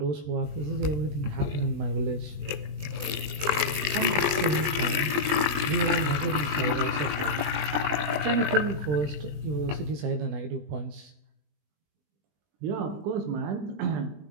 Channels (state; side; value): late; left; 20 ms